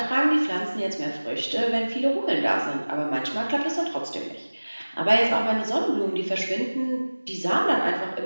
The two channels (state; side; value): inverted; both; correlation -1.00